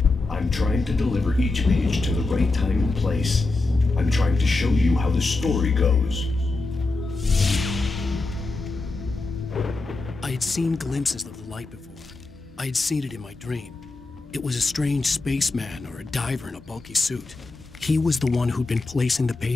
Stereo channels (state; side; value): quieter; right; 3.4 dB